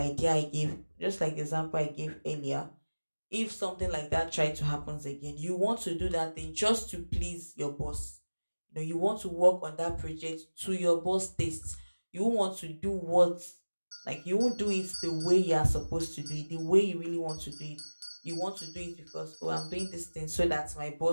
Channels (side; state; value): both; inverted; correlation -1.00